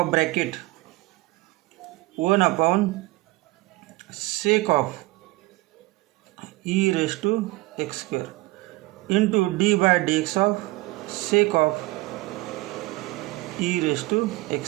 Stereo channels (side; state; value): left; quieter; 20.9 dB